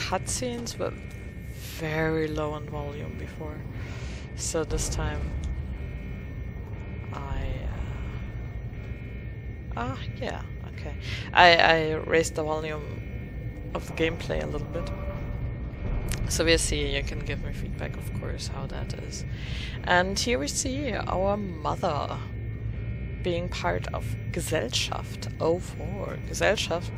were very low on volume before. So this time yeah, okay. I raised the volume of the gameplay a little bit. So we'll see, you can give me feedback, of course, how that is. And here we see our mother being part of Gesellschaft 04.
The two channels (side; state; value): both; identical; correlation 1.00